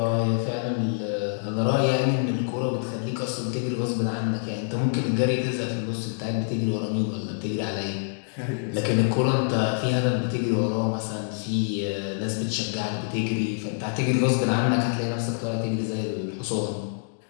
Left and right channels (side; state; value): right; silent; digital silence